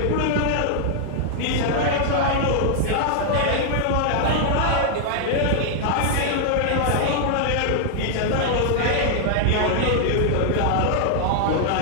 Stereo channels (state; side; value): different; both; correlation -0.01